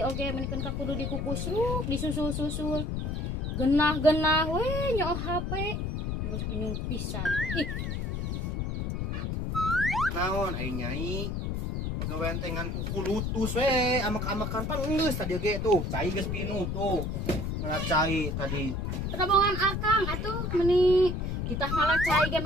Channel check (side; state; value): left; noise; rumble, 2 dB below the sound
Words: oge menikeun ka kudu dikukusruk disusul-susul genah-genah we nyoh HP terus tunyung pisan ih Naon ai nyai? Pagawean teh ngan kuku lutus we, amek-amekan pan geus tadi ge tuh, cai geus pinuh tuh. Ngalacai tadi. Terobongan akang atuh meni kita ngalacai ge